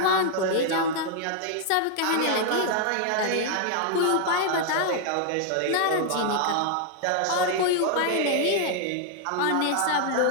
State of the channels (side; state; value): both; different; correlation 0.00